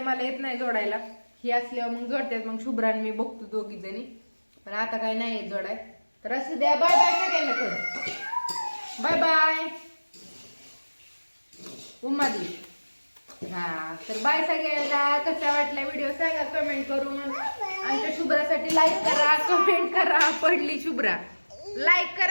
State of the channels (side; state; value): both; inverted; correlation -1.00